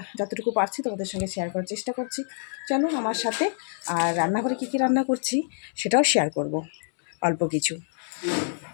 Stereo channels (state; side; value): silent; right; digital silence